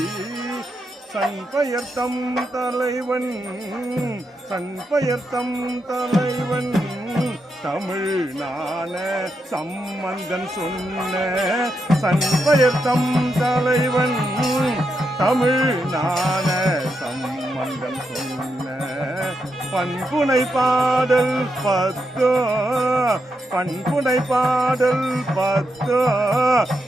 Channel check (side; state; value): both; normal; correlation 0.84